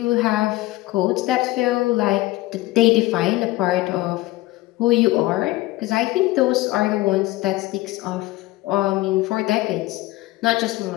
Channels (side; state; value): right; quieter; 18.5 dB